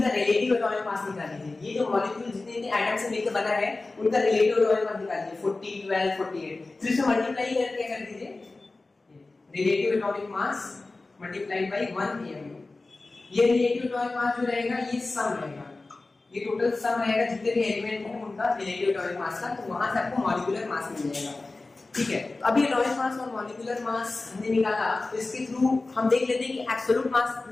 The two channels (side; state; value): right; quieter; 3.4 dB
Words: रिलेटिव एटॉमिक मास निकाल लीजिए। ये जो मॉलिक्यूल जितने एटम से मिलकर बना है उनका रिलेटिव एटॉमिक मास निकालिए, 40, 12, 48। फिर से मल्टीप्लाई करके कर दीजिए, relative atomic mass multiplied by 1 AMU। ये रिलेटिव एटॉमिक मास जो रहेगा ये सम रहेगा, ये टोटल सम रहेगा जितने भी एलिमेंट हैं उनका रिलेटिव एटॉमिक मास का। तो वहां से आपको मॉलिक्यूलर मास मिल जाएगा। ठीक है, तो अभी एटॉमिक मास और मॉलिक्यूलर मास हमने निकाला, तो इसके थ्रू हम देख लेते हैं कि एब्सोल्यूट